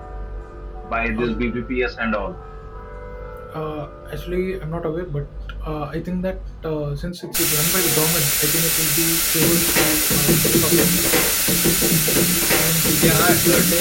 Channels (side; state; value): both; identical; correlation 1.00